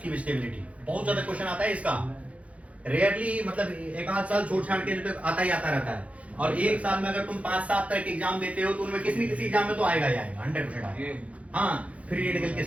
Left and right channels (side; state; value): left; late; 0.065 ms